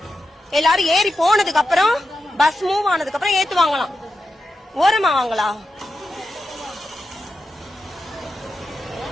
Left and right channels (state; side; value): normal; both; correlation 0.89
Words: எல்லாரும் ஏறி போனதுக்கு அப்புறம் பஸ் மூவ் ஆனதுக்கு அப்புறம் ஏத்துவாங்களாம். ஓரமா வாங்களா?